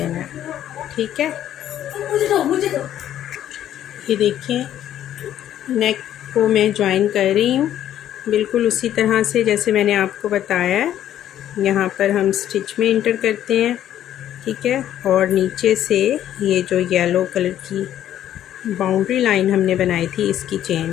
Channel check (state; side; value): quieter; right; 11.4 dB